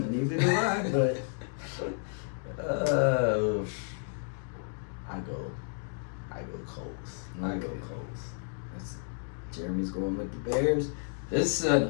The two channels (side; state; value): right; silent; digital silence